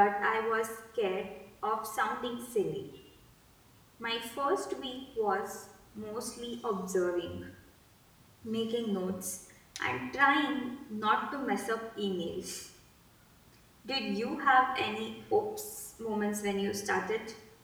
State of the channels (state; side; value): identical; both; correlation 1.00